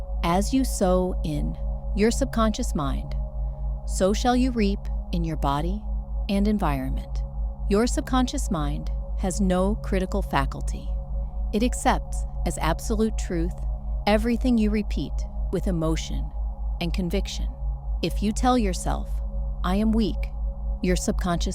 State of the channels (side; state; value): both; identical; correlation 1.00